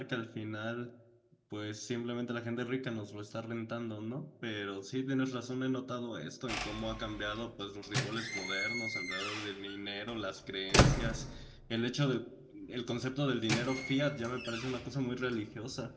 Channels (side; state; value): both; identical; correlation 1.00